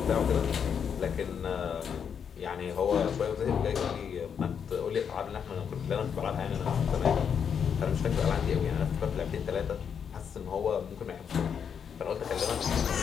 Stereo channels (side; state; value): right; quieter; 7.3 dB